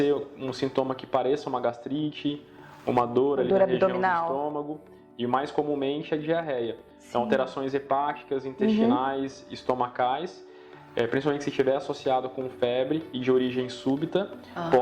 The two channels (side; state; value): both; identical; correlation 1.00